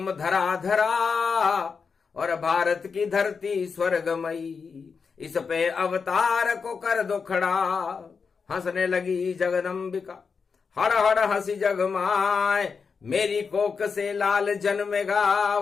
धरा धरा। और भारत की धरती स्वर्गमयी, इस पे अवतार को कर दो खड़ा। हंसने लगी जगदम्बिका, हड़ हड़ हंसी जगमाए। मेरी कोक से लाल जन्मेगा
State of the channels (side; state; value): right; quieter; 5.5 dB